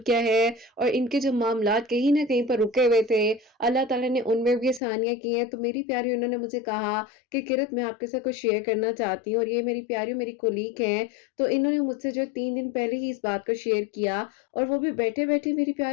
किया है, और इनके जो मामलात कहीं ना कहीं पर रुके हुए थे, अल्लाह ताला ने उनमें भी आसानियाँ की हैं। तो मेरी प्यारी उन्होंने मुझे कहा कि किरत मैं आपके साथ कुछ शेयर करना चाहती हूँ, और ये मेरी प्यारी मेरी कोलीग हैं। तो इन्होंने मुझसे जो 3 दिन पहले ही इस बात को शेयर किया, और वो भी बैठे बैठे मेरी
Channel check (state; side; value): drops out; right; at 4.8 s